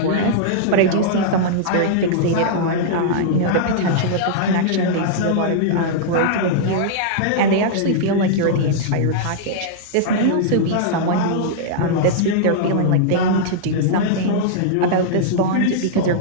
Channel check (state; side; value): different; both; correlation -0.02